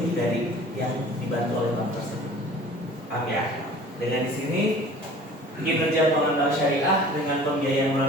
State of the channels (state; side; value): normal; both; correlation 0.46